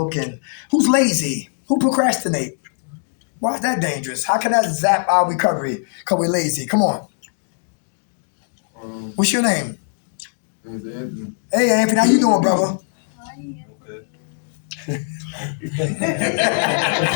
Who's lazy? Who procrastinate? Why is that dangerous? How can that zap our recovery? Because we're lazy. Come on. What's your name? Anthony. Hey, Anthony, how you doing, brother?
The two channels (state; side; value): silent; right; digital silence